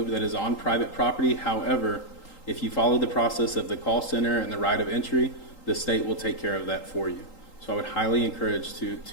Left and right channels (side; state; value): right; late; 3.8 ms